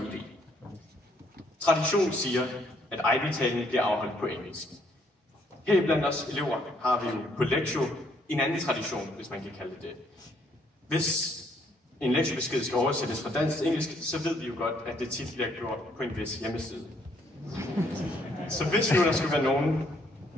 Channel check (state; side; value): normal; both; correlation 0.68